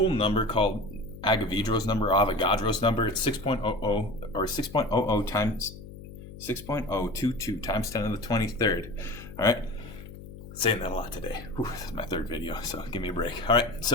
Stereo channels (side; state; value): left; noise; hum, 15 dB below the sound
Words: number called Avogadro's number, Avogadro's number. It's 6.00 or 6.00 times 6.022 times 10 to the 23rd. All right, saying that a lot today. Whew, this is my third video, so give me a break. All right,